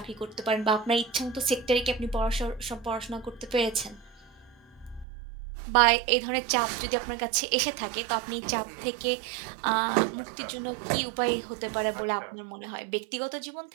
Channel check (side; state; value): left; drops out; at 5.1 s